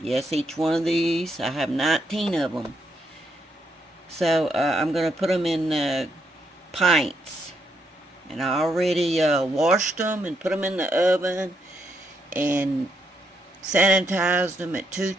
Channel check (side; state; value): both; normal; correlation 0.77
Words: each one of these, I have 19 of them. So I'm going to put them in pints. And I already washed them and put them in the oven and sanitized them at